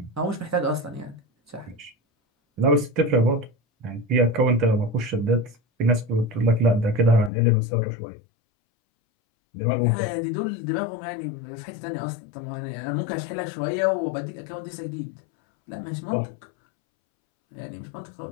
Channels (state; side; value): drops out; right; at 7.3 s